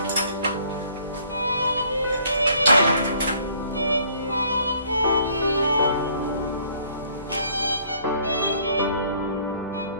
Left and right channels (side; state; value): both; inverted; correlation -0.60